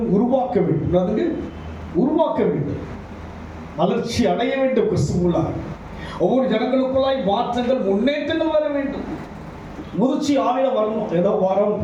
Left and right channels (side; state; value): both; identical; correlation 1.00